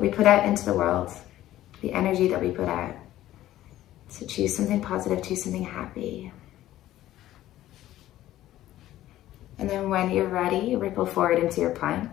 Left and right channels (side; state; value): right; quieter; 14.1 dB